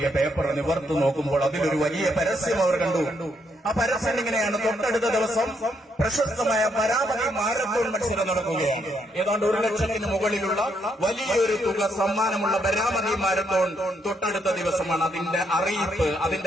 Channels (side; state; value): both; normal; correlation 0.75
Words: പേപ്പർ നിവർത്ത് നോക്കുമ്പോൾ അതിലൊരു വലിയ പരസ്യം അവർ കണ്ടു. ആ പരസ്യം ഇങ്ങനെയാണ്, തൊട്ടടുത്ത ദിവസം പ്രശസ്തമായ ബരാമതി മാരത്തോൺ മത്സരം നടക്കുകയാണ്. ഏതാണ്ട് 1 ലക്ഷത്തിന് മുകളിലുള്ള വലിയൊരു തുക സമ്മാനമുള്ള ബരാമതി മാരത്തോൺ തൊട്ടടുത്ത ദിവസമാണ്. അതിന്റെ അറിയിപ്പ്,